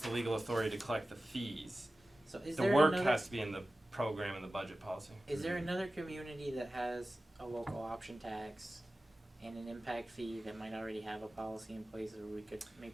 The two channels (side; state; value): both; normal; correlation 0.95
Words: legal authority to collect the fees. so is The there work another, has to be in the program and the budget policy. is there another community that has a local option tax and an impact fee that might already have a policy in place, or we could